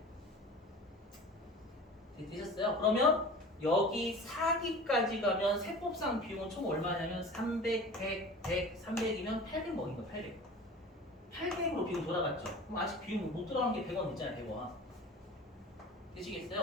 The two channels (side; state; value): both; normal; correlation 0.39